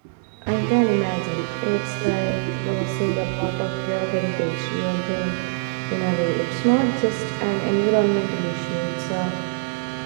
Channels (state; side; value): silent; left; 59 dB below the other